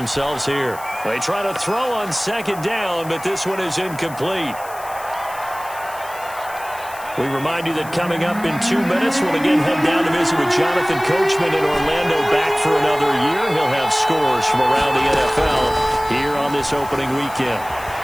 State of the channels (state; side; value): noise; left; hiss, 18 dB below the sound